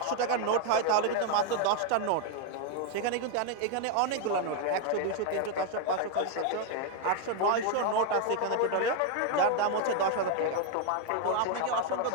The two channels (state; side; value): different; both; correlation 0.00